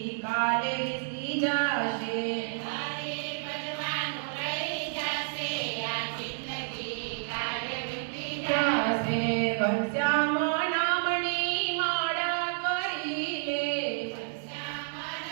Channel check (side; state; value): left; silent; 58 dB below the other